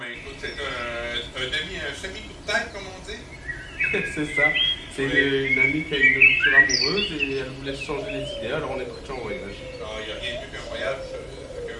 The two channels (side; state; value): both; identical; correlation 1.00